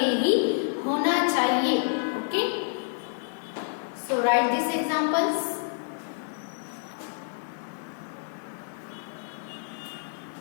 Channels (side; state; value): right; silent; 59 dB below the other